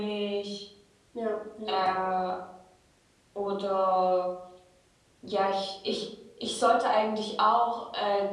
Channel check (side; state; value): both; identical; correlation 1.00